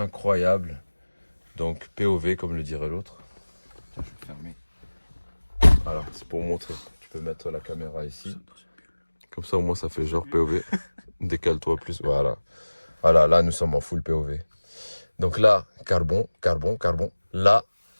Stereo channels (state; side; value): inverted; both; correlation -1.00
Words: Donc POV comme le dirait l'autre. Tiens, je vais le fermer. Voilà, c'est pour montrer. Tu peux mettre la caméra ici. Comme ça au moins ça fait genre POV. Décale-toi plus. Voilà. Voilà, là nous sommes en full POV. Donc là, carbone. Là,